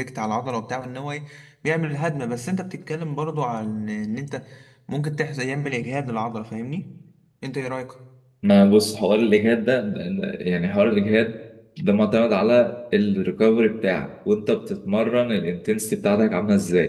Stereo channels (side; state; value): both; identical; correlation 1.00